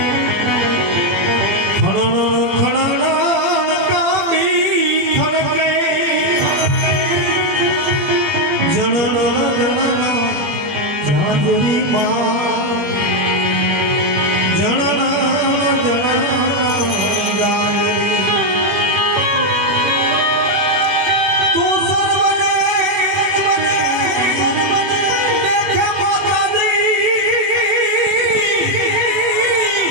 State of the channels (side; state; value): left; late; 21 ms